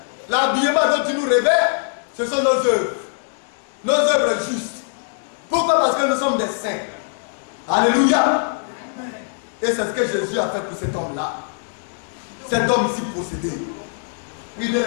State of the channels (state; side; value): silent; right; digital silence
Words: l'habillement dont tu nous révèles, ce sont nos œuvres. Nos œuvres justes. Pourquoi? Parce que nous sommes des saints. Alléluia. Et c'est ce que Jésus a fait pour cet homme-là. Cet homme ici possédé. Oui, bien